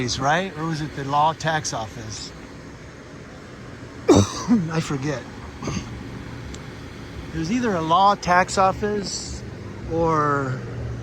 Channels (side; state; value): both; identical; correlation 1.00